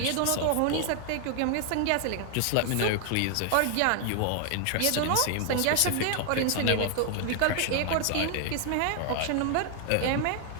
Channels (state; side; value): different; both; correlation 0.00